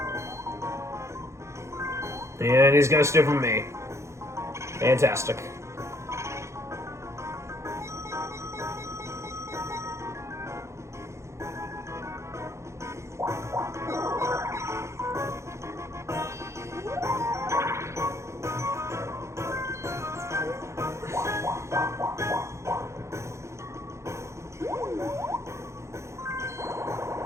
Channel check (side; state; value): left; late; 0.14 ms